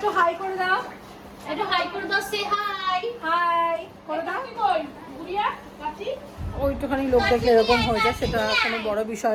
হাই করে দাও, একটু হাই করে দাও। সে হাই হাই করে দাও। কই গুড়িয়া কাচি ওইটুখানি লোক দেখলে এরকম হয়ে যায়, সেটা কোনো বড়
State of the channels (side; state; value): both; identical; correlation 1.00